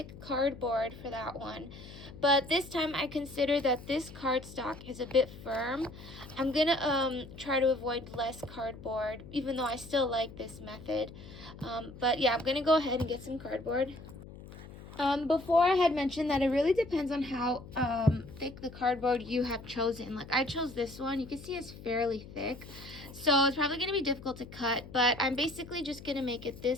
cardboard for that one. But this time I consider that this cardstock is a bit firm. I'm going to try to avoid less cardboard, even though I still like this method. But yeah, I'm going to go ahead and get some cardboard. Before I had mentioned that it really depends on how thick the cardboard you have chosen. Like I chose this one. You can see it's fairly thick. So it's probably going to be difficult to cut, but I'm basically just going to make it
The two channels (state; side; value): noise; left; hum, 16 dB below the sound